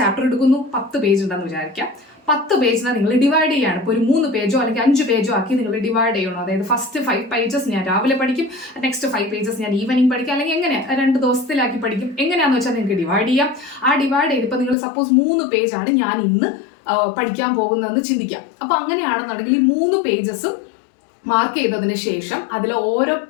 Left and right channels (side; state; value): right; drops out; at 14.8 s